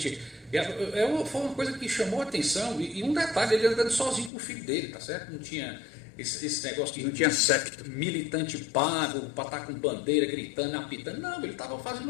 Foi uma coisa que chamou a atenção. E um detalhe, ele andando sozinho com o filho dele, tá certo? Não tinha esse negócio de... Não tinha secto. Militante pago, para estar com bandeira, gritando, apitando. Não, ele estava fazendo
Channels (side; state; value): right; drops out; at 4.3 s